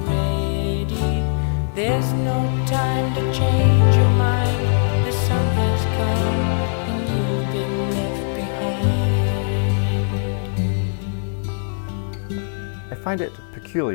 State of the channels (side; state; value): right; silent; 61 dB below the other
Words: ready. There's no time to change your mind. The sun has come and you've been left behind. I find it